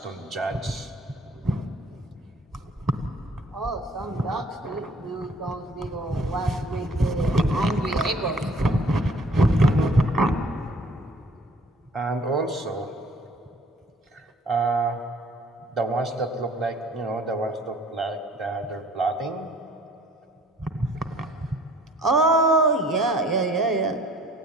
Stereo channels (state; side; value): normal; both; correlation 0.55